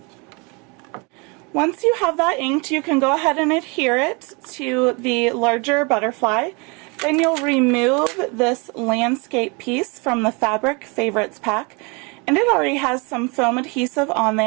Once you have that inked, you can go ahead and adhere it to the larger butterfly. Then you'll remove this landscape piece from the Fabric Favorites pack. And it already has some foam adhesive on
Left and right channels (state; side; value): quieter; left; 30.4 dB